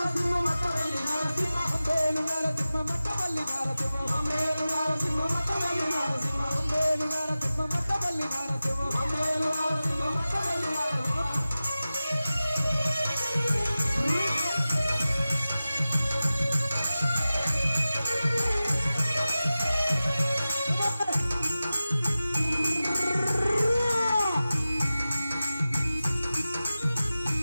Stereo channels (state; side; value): inverted; both; correlation -0.95